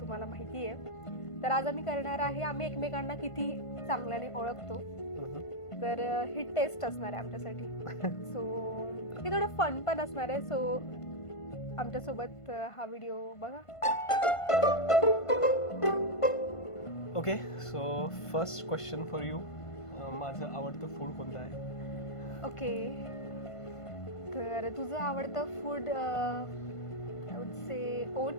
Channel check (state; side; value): late; right; 1.5 ms